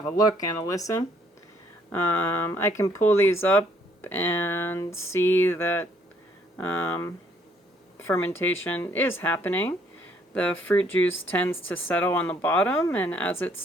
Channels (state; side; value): normal; both; correlation 0.66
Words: a look and a listen. I can pull these up and see that fermentation is happening. The fruit juice tends to settle on the bottom, and as it